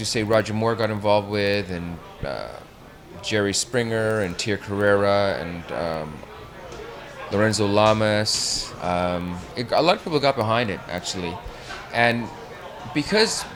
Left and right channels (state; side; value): identical; both; correlation 1.00